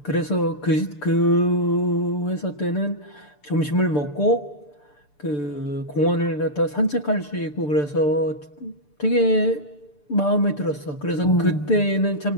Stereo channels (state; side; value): late; right; 6.8 ms